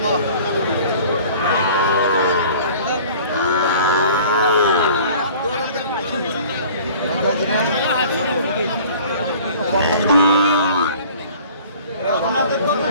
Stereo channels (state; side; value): inverted; both; correlation -0.48